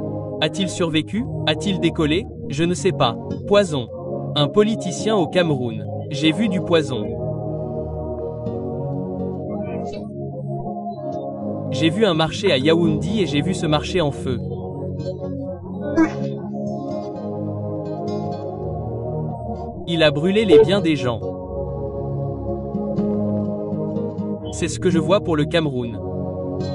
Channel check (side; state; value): both; identical; correlation 1.00